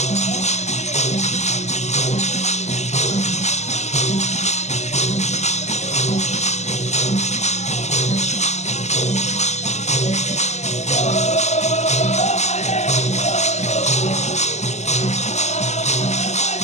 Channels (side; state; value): right; late; 0.33 ms